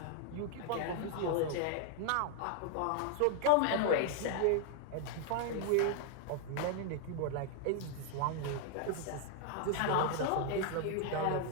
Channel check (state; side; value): different; both; correlation 0.00